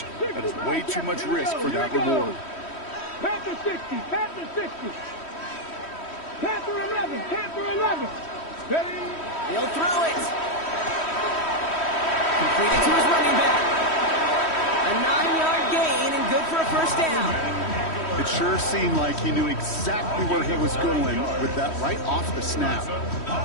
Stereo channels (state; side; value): late; right; 3.1 ms